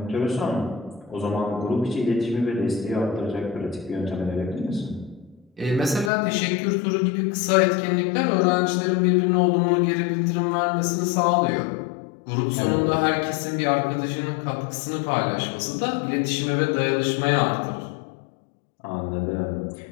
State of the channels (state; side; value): drops out; right; at 6.1 s